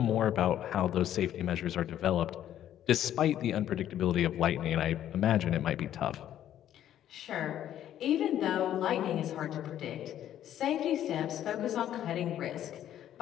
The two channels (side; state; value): right; quieter; 11.3 dB